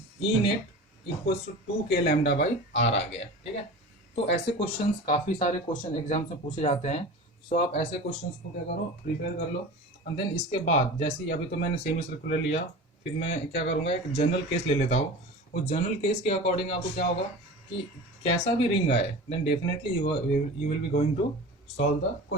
E net equals to 2k lambda by R आ गया, ठीक है। तो ऐसे क्वेश्चंस काफ़ी सारे क्वेश्चन एग्जाम्स में पूछे जाते हैं, सो आप ऐसे क्वेश्चंस को क्या करो, प्रिपेयर कर लो, एंड देन इसके बाद जैसे ही अभी तो मैंने सेमी सर्कुलर लिया, फिर मैं क्या करूँगा, एक जनरल केस ले लेता हूँ। उस जनरल केस के अकॉर्डिंग आपको क्या होगा कि कैसा भी रिंग आए, then definitely you will be going to solve the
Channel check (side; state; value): both; normal; correlation 0.34